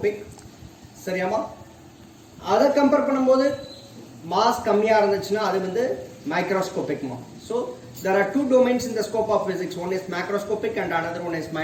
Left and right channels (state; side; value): identical; both; correlation 1.00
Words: சரியாமா? அதை கம்பேர் பண்ணும்போது மாஸ் கம்மியாக இருந்துச்சுன்னா அது வந்து மைக்ரோஸ்கோபிக்மா. So there are two domains in the scope of physics. One is macroscopic and another one is